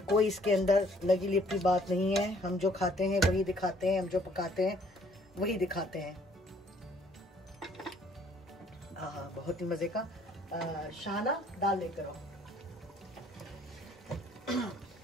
कोई इसके अंदर लगी लिपटी बात नहीं है। हम जो खाते हैं वही दिखाते हैं, हम जो पकाते हैं वही दिखाते हैं। हाँ, बहुत ही मजे का। शाना दाल लेकर आओ।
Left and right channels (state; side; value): normal; both; correlation 0.61